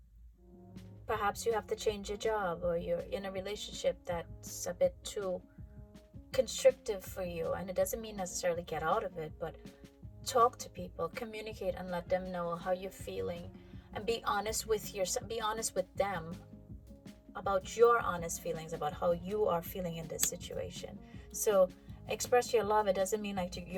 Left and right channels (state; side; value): identical; both; correlation 1.00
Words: perhaps you have to change your job, or you're in a relationship that's a bit too constrictive for you. And it doesn't mean necessarily get out of it, but talk to people, communicate, and let them know how you're feeling, and be honest with yourself, be honest with them about your honest feelings about how you are feeling in this situation. So express your love. It doesn't mean like